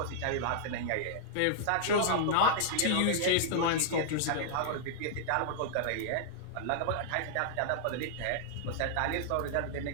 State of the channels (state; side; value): different; both; correlation -0.01